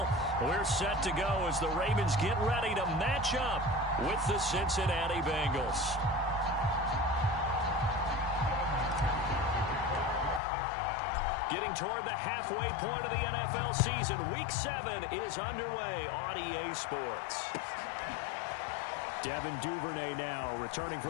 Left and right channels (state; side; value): drops out; right; at 10.4 s